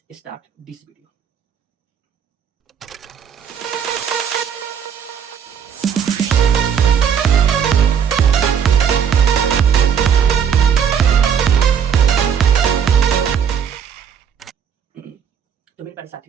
स्टार्ट दिस वीडियो। तो मेरे प्यारे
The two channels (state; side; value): quieter; left; 7.8 dB